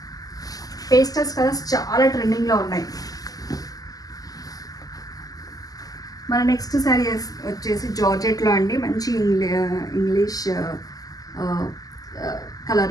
పేస్టల్స్ కలర్స్ చాలా ట్రెండింగ్లో ఉన్నాయి. మన నెక్స్ట్ శారీ వచ్చేసి జార్జెట్లో అండి. మంచి ఇంగ్లీష్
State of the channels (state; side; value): late; right; 0.17 ms